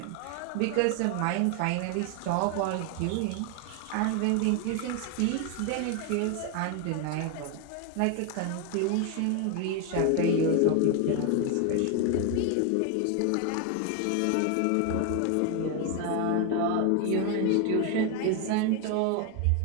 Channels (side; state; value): both; different; correlation 0.01